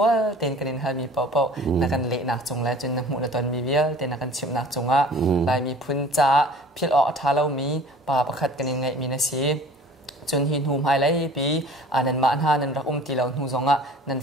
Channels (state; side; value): normal; both; correlation 0.46